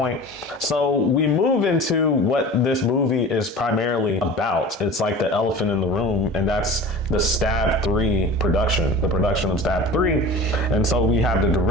So we move into what this movie is primarily about. It's like the elephant in the room, and that's the Stab 3 production, the production of Stab 3. And so we have the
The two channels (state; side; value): normal; both; correlation 0.37